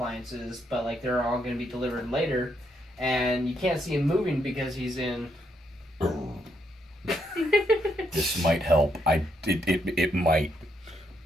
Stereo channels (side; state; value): both; normal; correlation 0.76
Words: but like they're all going to be delivered later, and you can't see him moving because he's in. This might help. It might.